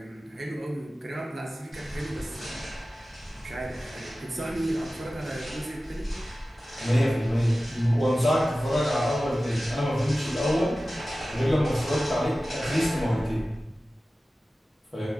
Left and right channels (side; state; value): both; normal; correlation 0.96